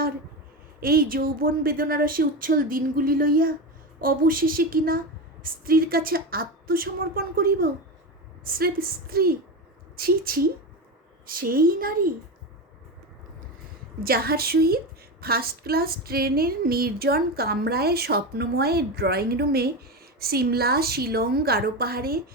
এই যৌবন বেদনারসে উচ্ছল দিনগুলি লইয়া অবশেষে কিনা স্ত্রীর কাছে আত্মসমর্পণ করিব। স্রেফ স্ত্রী, ছি ছি, সেই নারী যাহার সহিত ফার্স্ট ক্লাস ট্রেনের নির্জন কামরায় স্বপ্নময় ড্রয়িং রুমে সিমলা, শিলং, গারো পাহাড়ে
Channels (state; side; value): normal; both; correlation 0.19